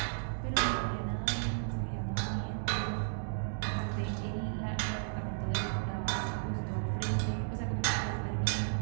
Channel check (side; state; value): left; silent; digital silence